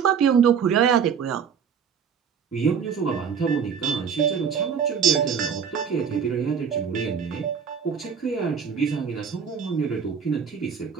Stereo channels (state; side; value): quieter; left; 6.9 dB